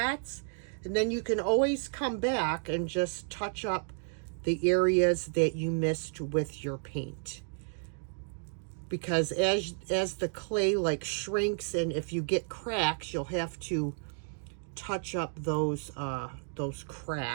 And then you can always come back and just touch up the areas that you missed with your paint. Because as the clay like shrinks, and if you get cracks, you'll have to touch up those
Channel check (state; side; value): silent; left; 56 dB below the other